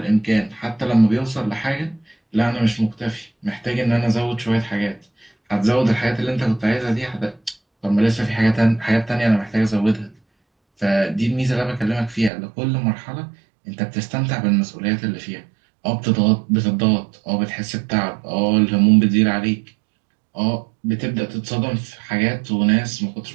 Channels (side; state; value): left; drops out; at 12.3 s